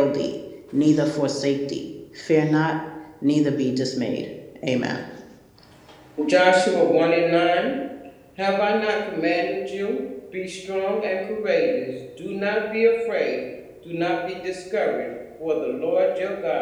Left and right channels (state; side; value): identical; both; correlation 1.00